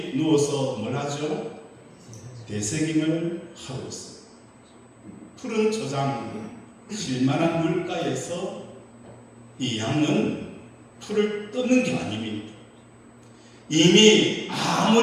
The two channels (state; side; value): identical; both; correlation 1.00